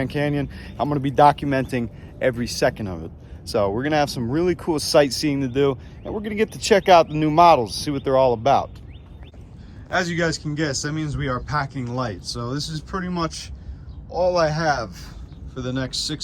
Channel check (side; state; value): both; identical; correlation 1.00